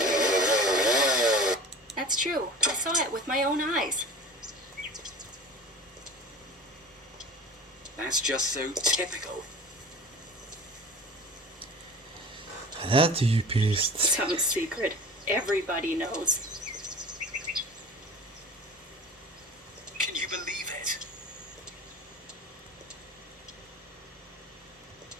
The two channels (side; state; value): both; normal; correlation 0.39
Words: That's true. I saw it with my own eyes. That's just so typical. Det är typiskt. Some secret. Everybody knows. Can you believe it?